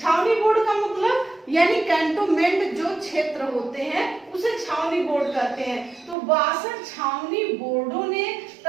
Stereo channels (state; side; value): drops out; left; at 6.2 s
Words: बोर्ड का मतलब यानी कैंटोनमेंट जो क्षेत्र होते हैं उसे छावनी बोर्ड कहते हैं। तो 62 छावनी बोर्डों ने